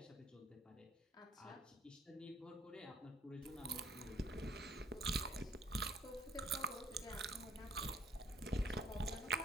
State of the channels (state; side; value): normal; both; correlation 0.60